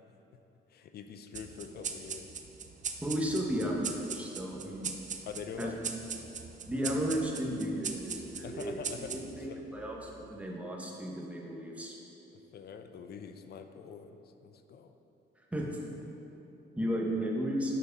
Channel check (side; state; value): both; normal; correlation 0.60